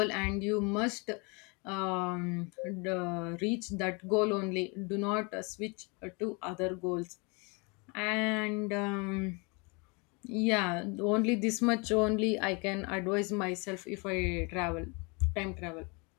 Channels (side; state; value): right; quieter; 30.7 dB